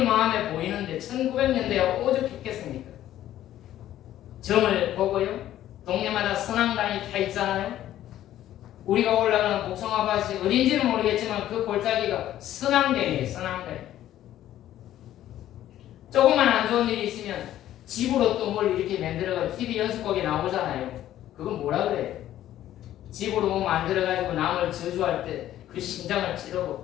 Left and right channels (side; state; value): right; quieter; 12.7 dB